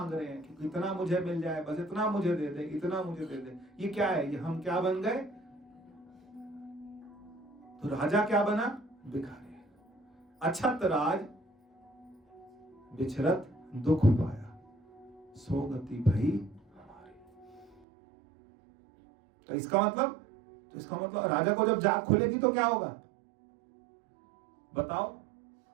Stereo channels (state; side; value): drops out; left; at 17.8 s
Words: रहे हैं कि इतना मुझे मिल जाए, बस इतना मुझे दे दे, इतना मुझे दे दे। ये क्या है? ये हम क्या बन गए? तो राजा क्या बना? भिखारी। अछत राज बिछरत दुख पाया, सो गति भई हमारी। तो इसका मतलब राजा को जब जाग खुलेगी तो क्या होगा? बताओ।